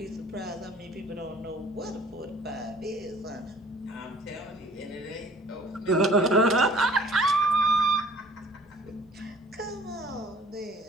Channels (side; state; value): both; normal; correlation 0.53